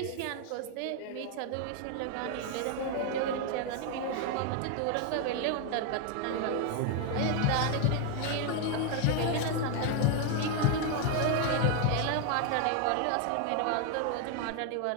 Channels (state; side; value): different; both; correlation 0.01